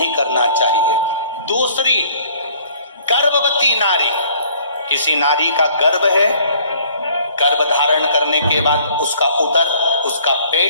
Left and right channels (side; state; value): both; inverted; correlation -0.57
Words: करना चाहिए। दूसरी, गर्भवती नारी, किसी नारी का गर्भ है, गर्भ धारण करने के बाद उसका उदर, उसका